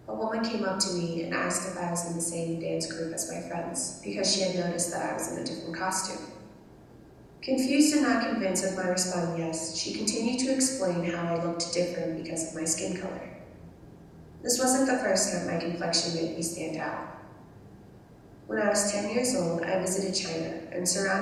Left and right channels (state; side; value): identical; both; correlation 1.00